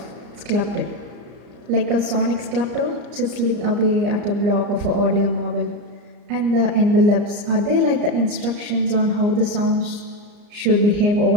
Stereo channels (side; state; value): left; late; 34 ms